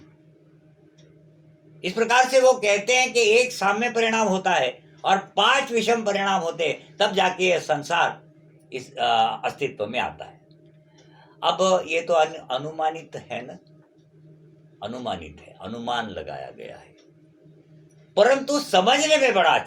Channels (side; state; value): both; identical; correlation 1.00